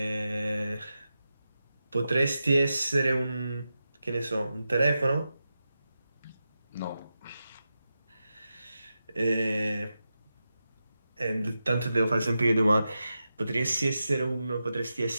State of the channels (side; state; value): both; inverted; correlation -0.90